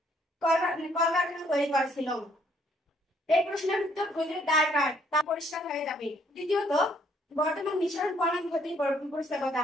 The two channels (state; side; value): normal; both; correlation 0.67